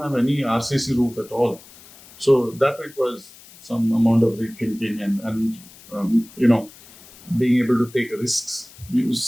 have any RCC roof at all. So that requires some amount of rethinking and being able to take risks.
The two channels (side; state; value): left; noise; hiss, 22 dB below the sound